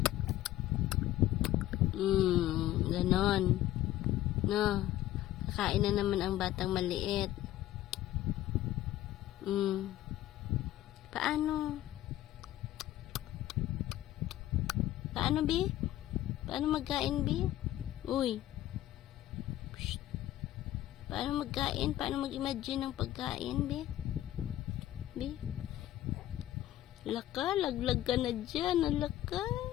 Ganon. No. Kakain na naman ang batang maliit. Paano? Paano, Bi? Paano magkain, Bi? Uy. Psst. Paano magkain? Paano mag-imagine ng pagkain, Bi? Bi? Laka, laglag ka na dyan. Alaka.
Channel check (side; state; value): right; quieter; 14.1 dB